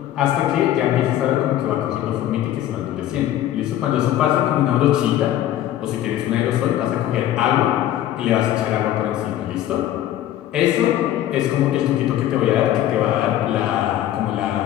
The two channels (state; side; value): quieter; right; 12.5 dB